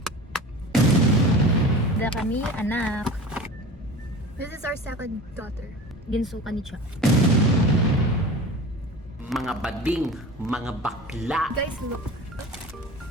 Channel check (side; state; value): both; normal; correlation 0.36